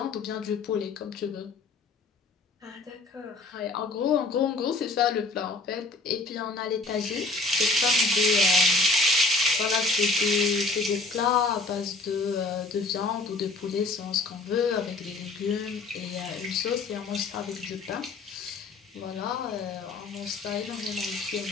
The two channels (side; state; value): right; quieter; 3.4 dB